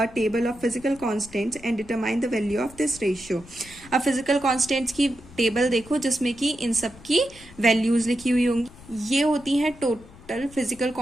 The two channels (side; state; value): left; noise; rumble, 21 dB below the sound